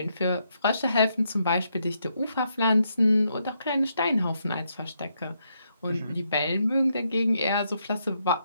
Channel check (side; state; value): both; inverted; correlation -0.78